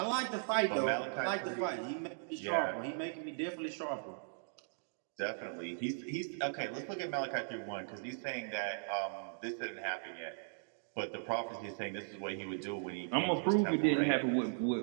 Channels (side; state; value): left; silent; digital silence